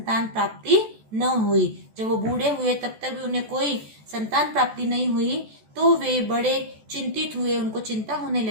प्राप्ति न हुई। जब वो बूढ़े हुए तब तक भी उन्हें कोई संतान प्राप्ति नहीं हुई, तो वे बड़े चिंतित हुए, उनको चिंता होने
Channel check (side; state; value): left; late; 14 ms